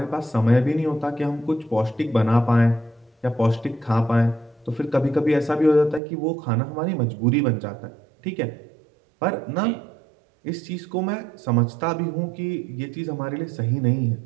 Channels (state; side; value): drops out; left; at 6.0 s